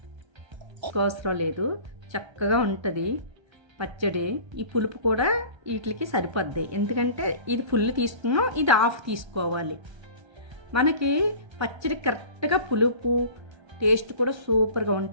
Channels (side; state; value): left; late; 1.3 ms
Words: అవసరం లేదు, చక్కగా ఉంటుంది పచ్చడి. ఈ పులుపు కూడా వీటికి సరిపోద్ది. ఎందుకంటే ఇది ఫుల్ తీసుకున్నాం, ఇది హాఫ్ తీసుకోవాలి. మనకి పచ్చడి కరెక్ట్గా పులుపు టేస్ట్ కూడా సూపర్గా